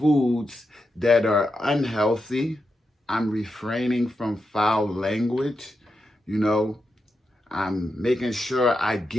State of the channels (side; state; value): both; normal; correlation 0.87